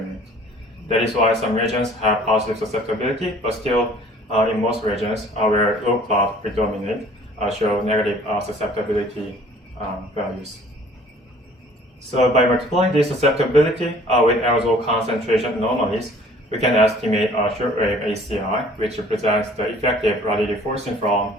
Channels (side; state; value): both; normal; correlation 0.53